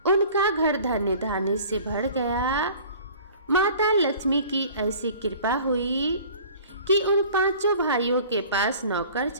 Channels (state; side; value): inverted; both; correlation -0.47